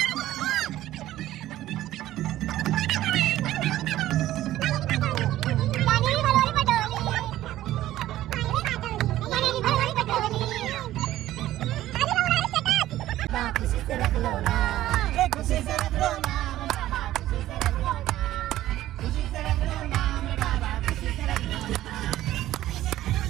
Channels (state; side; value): quieter; left; 14.3 dB